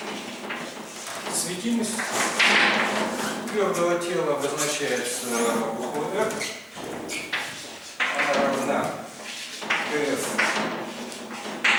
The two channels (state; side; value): identical; both; correlation 1.00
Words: Светимость твердого тела обозначается буквой R. Она равна ДФ